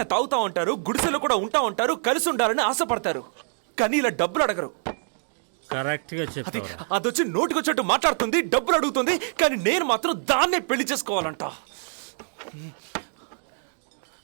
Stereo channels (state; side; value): silent; left; digital silence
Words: తాగుతా ఉంటారు, గుడిసెలో కూడా ఉంటా ఉంటారు, కలిసి ఉండాలని ఆశపడతారు. కానీ ఇలా డబ్బులు అడగరు. కరెక్ట్ గా చెప్పావు. అదొచ్చి నోటికొచ్చేట్టు మాట్లాడుతుంది, డబ్బులు అడుగుతుంది. కానీ నేను మాత్రం దాన్నే పెళ్లి చేసుకోవాలంట.